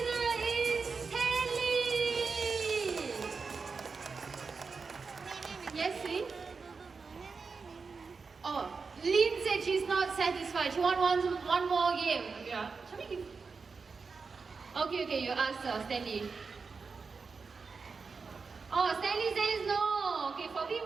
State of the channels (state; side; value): quieter; left; 4.8 dB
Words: She's not satisfied. She wants one more game. Yeah. Okay, you ask Stanley. Oh, Stanley says no. Okay, for